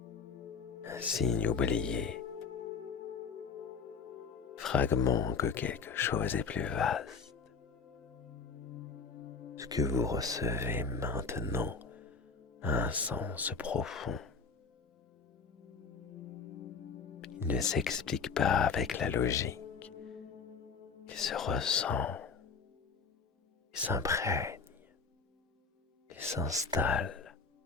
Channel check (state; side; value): quieter; right; 5.3 dB